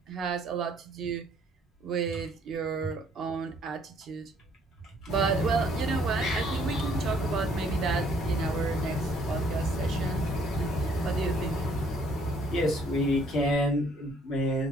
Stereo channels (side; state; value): both; normal; correlation 0.63